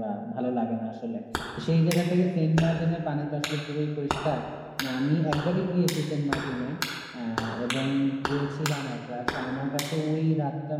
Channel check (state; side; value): identical; both; correlation 1.00